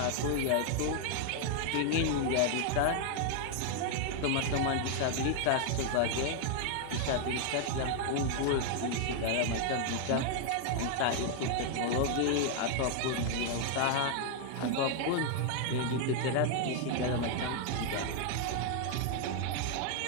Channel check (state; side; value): different; both; correlation 0.00